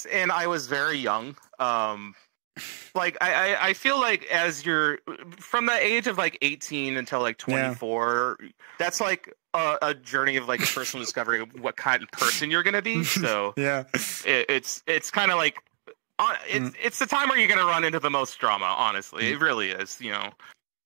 and I was very young. Like I feel like as you're from the age of like 18 until like 24, that's like a journey of like a personal discovery of what kind of person you're gonna be. So yeah, it's kind of like it's the time where you're gonna run into the most drama. Honestly, it really is. You know,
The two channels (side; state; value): left; silent; 60 dB below the other